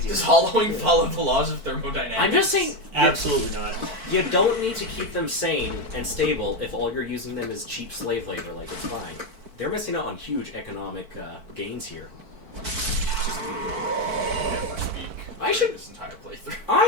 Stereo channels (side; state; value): left; late; 4.5 ms